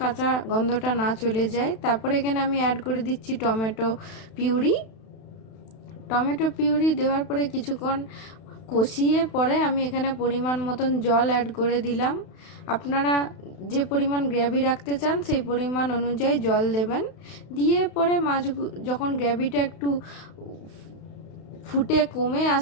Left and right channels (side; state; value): right; late; 32 ms